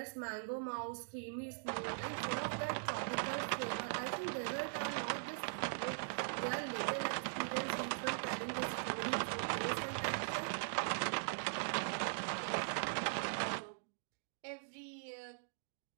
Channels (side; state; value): left; silent; digital silence